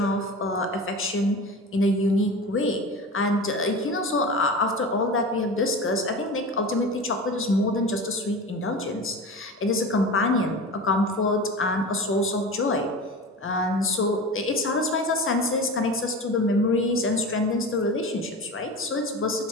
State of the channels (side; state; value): both; normal; correlation 0.31